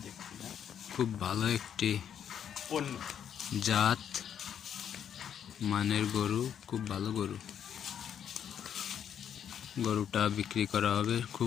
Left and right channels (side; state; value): right; quieter; 8.9 dB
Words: খুব ভালো একটি জাত মানের গরু, খুব ভালো গরু। গরুটা বিক্রি করা হবে,